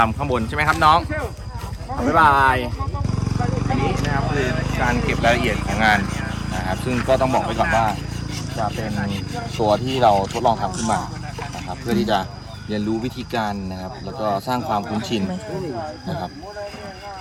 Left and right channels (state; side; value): identical; both; correlation 1.00